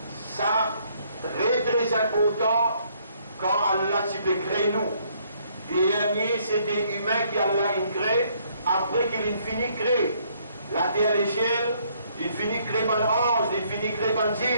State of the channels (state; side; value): inverted; both; correlation -0.67